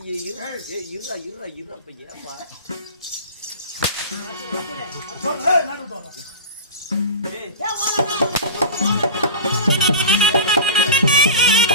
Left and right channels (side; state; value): both; inverted; correlation -0.32